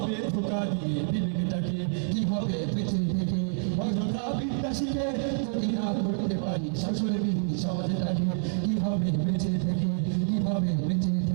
ধোকা দিয়ে বিবেকটাকে, কি হবে বেঁচে থেকে অযথা বিদ্যা শিখে যদি না করতে পারি শাসন বিধি সমাজটাকে। কি হবে বেঁচে থেকে, কি হবে বেঁচে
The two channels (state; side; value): silent; left; 59 dB below the other